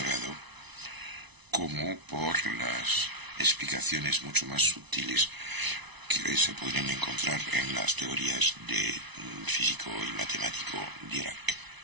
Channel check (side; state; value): left; late; 1.0 ms